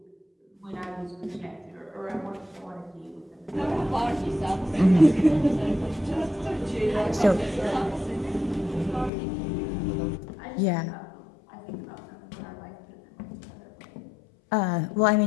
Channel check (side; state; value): right; drops out; at 9.1 s